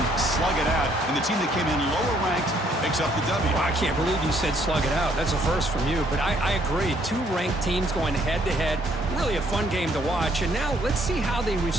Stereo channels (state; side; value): normal; both; correlation 0.66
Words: slug it out, and the team that came in lower ranked picks up the W. Well, I can't believe you said slug it out. That's a first from you, but I agree. 2 ranked teams going head-to-head. Really a fun game to watch, and now let's see how they